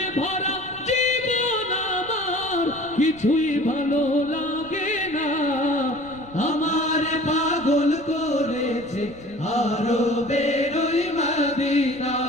ভরা জীবন আমার, কিছুই ভালো লাগে না। আমার পাগল করেছে আরবের ওই মদিনা।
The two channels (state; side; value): noise; left; rumble, 23 dB below the sound